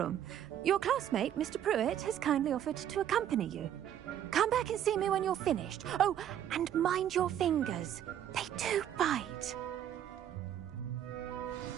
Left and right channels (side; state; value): left; quieter; 10.4 dB